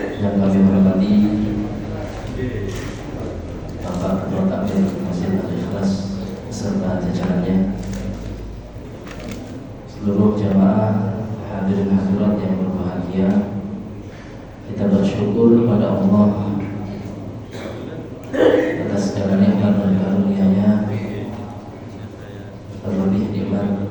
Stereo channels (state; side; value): identical; both; correlation 1.00